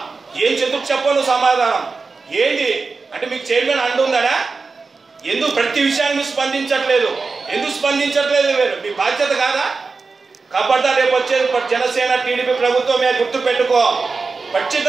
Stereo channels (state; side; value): quieter; left; 4.3 dB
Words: ఏం చెందుకు చెప్పు నువ్వు సమాధానం ఏంటి? అంటే మీకు చైర్మన్ అండు ఉందనా? ఎందుకు ప్రతి విషయాన్ని మీరు స్పందించట్లేదు? ఎందుకు స్పందించట్లేదు? మీ బాధ్యత కాదా? ఖబర్దార్. రేపు వచ్చేది జనసేన టీడీపీ ప్రభుత్వమే, గుర్తు పెట్టుకో.